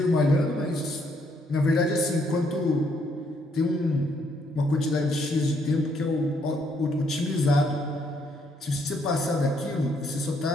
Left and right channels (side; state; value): both; normal; correlation 0.71